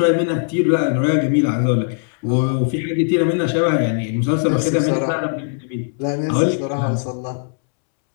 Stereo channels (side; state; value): right; silent; 67 dB below the other